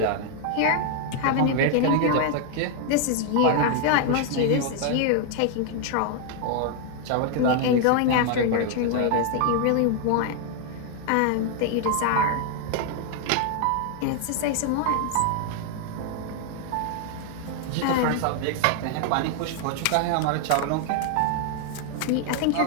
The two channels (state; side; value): different; both; correlation 0.00